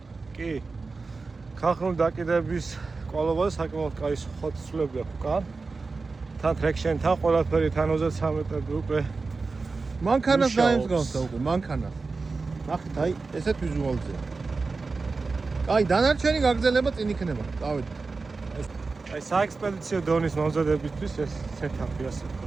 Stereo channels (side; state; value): left; quieter; 4.1 dB